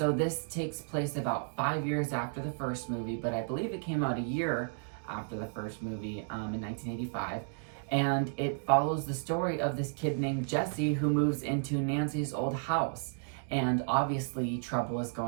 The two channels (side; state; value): left; silent; digital silence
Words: this takes place about 5 years after the first movie, but I believe it came out a year after the first movie in 1985. And it follows the story of this kid named Jesse who moves into Nancy's old house. And obviously trouble is